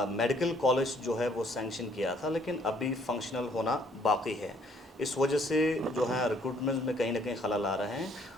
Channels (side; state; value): both; normal; correlation 0.63